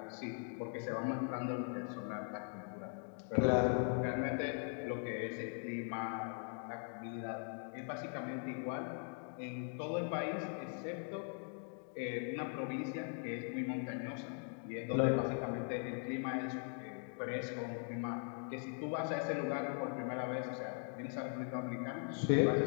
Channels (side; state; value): right; silent; 51 dB below the other